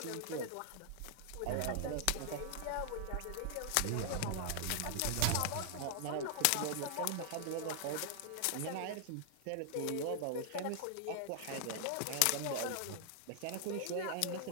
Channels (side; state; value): both; different; correlation 0.00